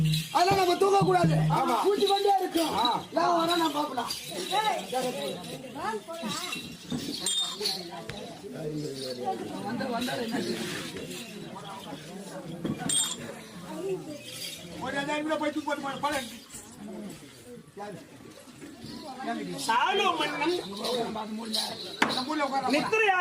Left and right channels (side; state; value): both; identical; correlation 1.00